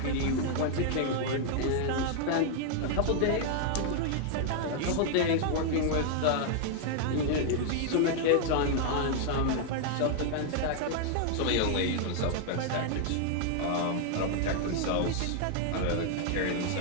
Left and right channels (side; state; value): both; different; correlation 0.00